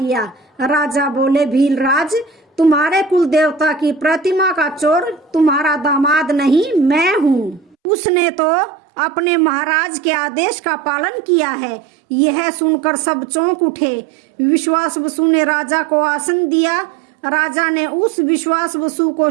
राजा बोले, भीलराज, तुम्हारे कुल देवता की प्रतिमा का चोर तुम्हारा दामाद नहीं, मैं हूँ। उसने तो अपने महाराज के आदेश का पालन किया है। यह सुनकर सब चौंक उठे। विश्वास बसु ने राजा को आसन दिया। राजा ने उस विश्वास बसु को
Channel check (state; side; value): drops out; left; at 7.8 s